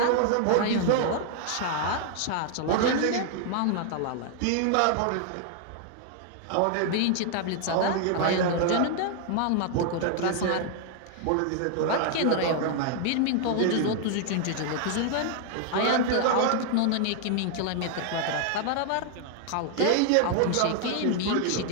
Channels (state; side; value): different; both; correlation 0.00